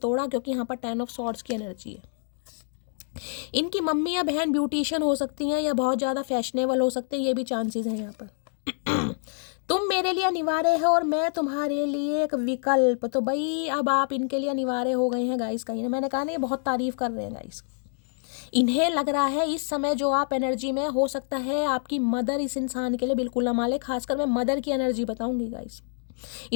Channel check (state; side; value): silent; right; 60 dB below the other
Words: क्योंकि यहाँ पर 10 ऑफ सॉर्ड्स की एनर्जी है। इनकी मम्मी या बहन ब्यूटिशियन हो सकती हैं या बहुत ज़्यादा फैशनेबल हो सकते हैं, ये भी चांसेस हैं यहाँ पर। तुम मेरे लिए अनिवार्य है और मैं तुम्हारे लिए एक विकल्प। तो भाई अब आप इनके लिए अनिवार्य हो गए हैं गाइस कहीं ना। मैंने कहा ना ये बहुत तारीफ कर रहे हैं गाइस। इन्हें लग रहा है इस समय जो आप एनर्जी में, हो सकता है आपकी मदर इस इंसान के लिए बिल्कुल ना माले। खासकर मैं मदर की एनर्जी बताऊंगी गाइस।